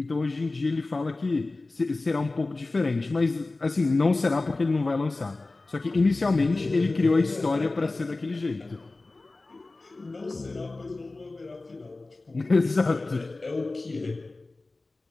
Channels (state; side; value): quieter; right; 3.2 dB